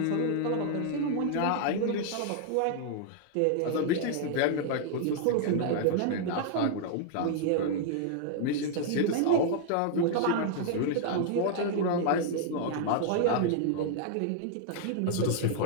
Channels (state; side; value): different; both; correlation 0.00